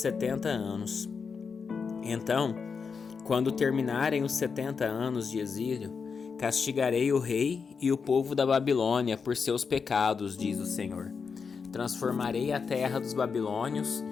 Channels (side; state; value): right; quieter; 5.6 dB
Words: anos. Então, quando terminarem os 70 anos de exílio, castigarei o rei e o povo da Babilônia por seus pecados, diz o Senhor. Transformarei a terra dos babilônios